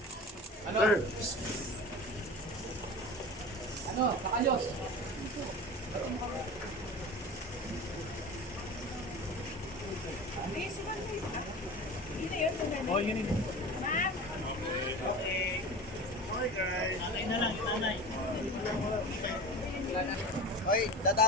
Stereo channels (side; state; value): both; normal; correlation 0.33